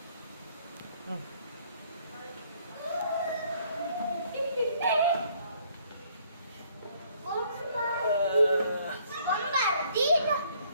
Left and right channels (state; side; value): inverted; both; correlation -0.63